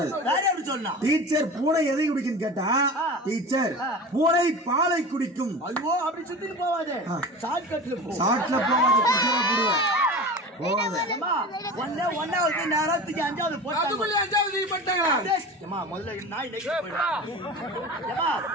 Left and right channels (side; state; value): both; normal; correlation 0.32